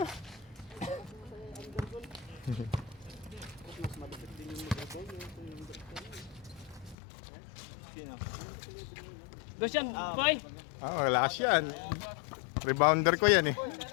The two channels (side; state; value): right; drops out; at 7.0 s